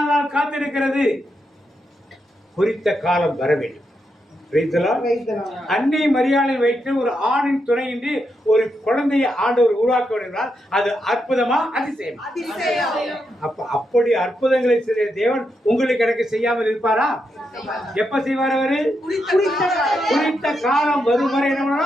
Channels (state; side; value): normal; both; correlation 0.83